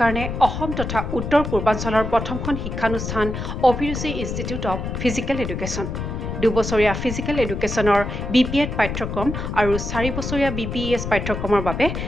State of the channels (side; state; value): left; noise; rumble, 4 dB below the sound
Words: কাৰণে অসম তথা উত্তৰ পূৰ্বাঞ্চলৰ প্ৰথমখন শিক্ষানুষ্ঠান অভিৰুচি ইনষ্টিটিউট অৱ ফিজিকেল এডুকেশ্যন। 2 বছৰীয়া ফিজিকেল এডুকেশ্যনৰ BPEd পাঠ্যক্ৰম আৰু 4 বছৰীয়া BPES পাঠ্যক্ৰমৰ বাবে